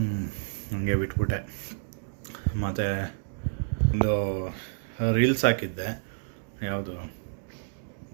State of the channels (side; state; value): left; silent; digital silence